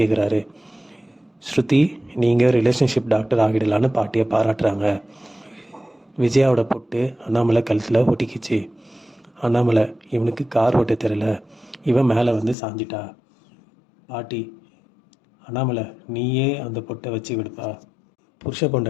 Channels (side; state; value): right; drops out; at 12.6 s